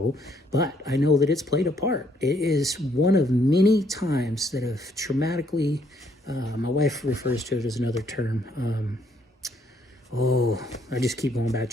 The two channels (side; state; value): both; normal; correlation 0.69